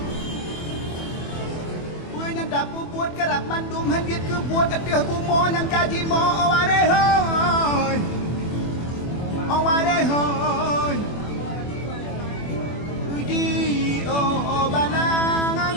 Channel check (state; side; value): late; right; 24 ms